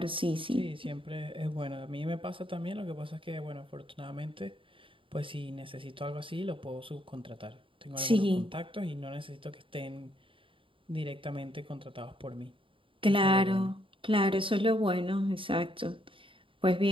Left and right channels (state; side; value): late; left; 0.25 ms